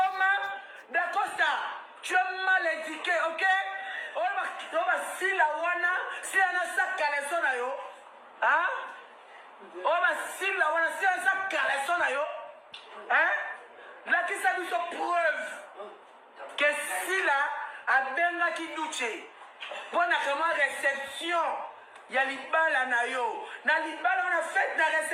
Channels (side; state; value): both; identical; correlation 1.00